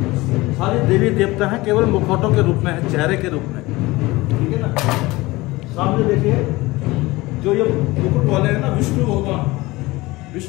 सारे देवी देवता हैं, केवल मुखौटों के रूप में है, चेहरे के रूप में, ठीक है ना। सामने देखिए जो ये मुकुट वाले हैं ना,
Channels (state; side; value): quieter; right; 20.7 dB